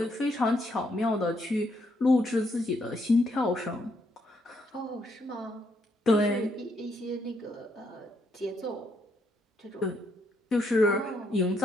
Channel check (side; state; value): both; normal; correlation 0.75